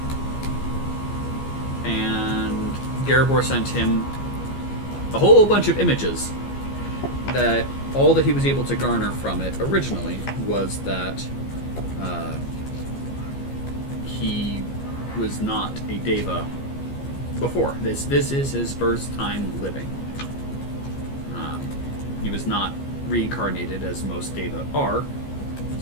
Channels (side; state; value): right; late; 15 ms